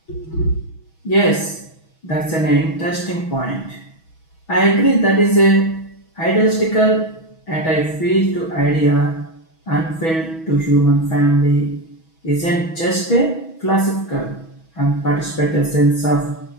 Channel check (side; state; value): right; late; 6.2 ms